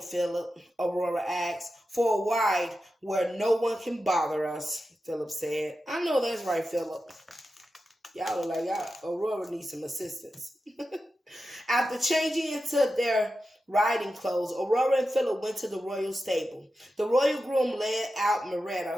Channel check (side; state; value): both; normal; correlation 0.91